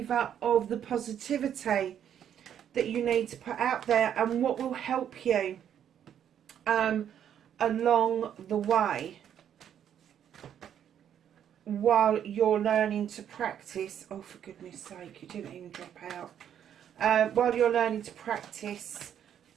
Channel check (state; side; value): quieter; left; 9.5 dB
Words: of the positivity that you need to put out there and what will help you along the way while you're learning to practice. Oh, for goodness sake, you didn't even drop out. While you're learning to practice